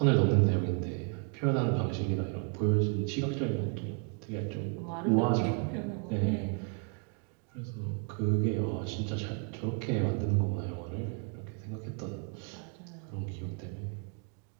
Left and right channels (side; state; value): left; quieter; 36.8 dB